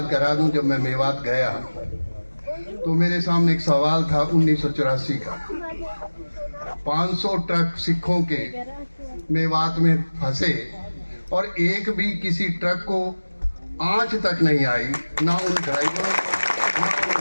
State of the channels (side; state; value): both; inverted; correlation -1.00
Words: करा दूं, जब मैं मेवात गया तो मेरे सामने एक सवाल था 1984 का। 500 ट्रक सिखों के मेवात में फंसे और एक भी किसी ट्रक को आंच तक नहीं आई, ना उन ड्राइवरों ना उन